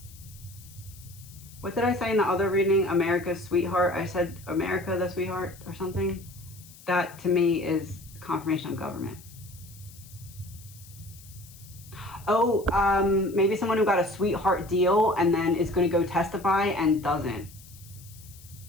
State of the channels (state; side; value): noise; left; hiss, 21 dB below the sound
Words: What did I say in the other reading? America's sweetheart. I said America the sweetheart or something. That to me is confirmation of government. Oh, maybe someone who got a sweetheart deal and then is going to go testify and doesn't.